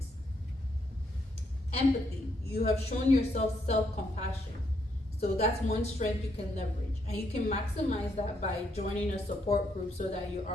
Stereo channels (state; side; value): normal; both; correlation 0.75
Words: Empathy. You have shown yourself self-compassion. So that's one strength you can leverage. And you can maximize that by joining a support group so that you're